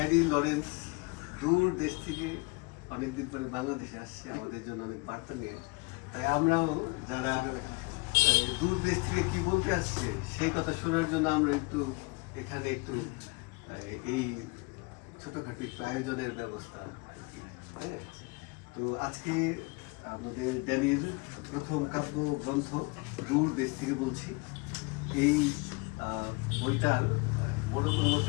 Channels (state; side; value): quieter; right; 27.8 dB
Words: লরেন্স দূর দেশ থেকে অনেকদিন পরে বাংলাদেশে আসছে আমাদের জন্য অনেক বার্তা নিয়ে। তাই আমরাও যারা দূর দেশ থেকে কি বলতে আসছে সেই কথা শোনার জন্য আমরা একটু এখানে একটু এই ছোটখাটো একটু আয়োজনের ব্যবস্থা। তো আজকে আমাদের ড্যানির প্রথম কাব্য গ্রন্থ দূর দেশ থেকে বলছি, এই বইটার বড় কোনো